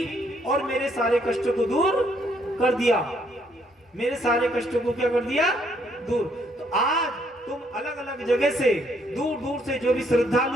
और मेरे सारे कष्टों को दूर कर दिया, मेरे सारे कष्टों को क्या कर दिया, दूर। तो आज तुम अलग अलग जगह से, दूर दूर से जो भी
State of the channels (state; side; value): normal; both; correlation 0.69